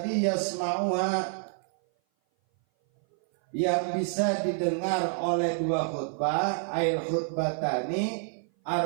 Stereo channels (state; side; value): silent; left; 57 dB below the other